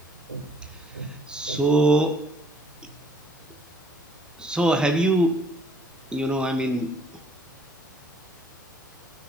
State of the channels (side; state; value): both; normal; correlation 0.62